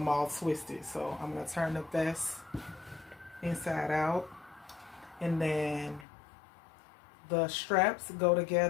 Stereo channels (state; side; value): drops out; right; at 6.1 s